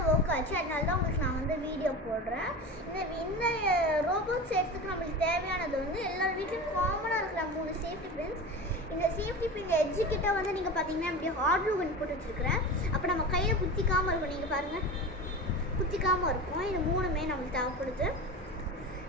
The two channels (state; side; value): normal; both; correlation 0.29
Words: வர்க் ஆச்சு, அதனால தான் உங்களுக்கு நான் வந்து வீடியோ போடுறேன். இந்த ரோபோட் செய்யறதுக்கு நமக்கு தேவையானது வந்து எல்லா வீட்லயும் காமனா இருக்கிற 3 சேஃப்டி பின்ஸ். இந்த சேஃப்டி பின் எட்ஜ் கிட்ட வந்து நீங்க பாத்தீங்கன்னா இப்படி ஹார்ட் க்ளூ கன் போட்டு வச்சிருக்கேன். அப்ப நம்ம கையில குத்திக்காம இருக்கும். நீங்க பாருங்க, குத்திக்காம இருக்கும். இது மூணுமே நமக்கு தேவைப்படுது.